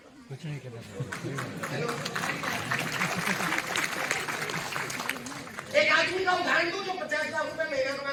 कुछ नहीं करना पड़ता। हेलो, एक आदमी का उदाहरण दो जो 50 लाख रुपए महीना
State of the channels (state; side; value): identical; both; correlation 1.00